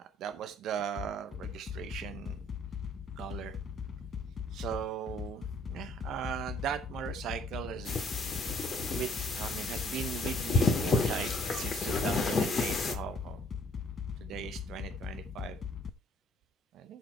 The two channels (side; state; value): both; normal; correlation 0.61